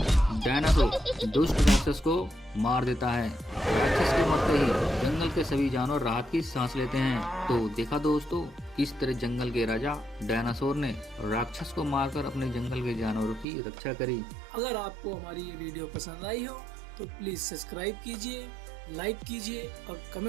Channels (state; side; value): drops out; left; at 13.5 s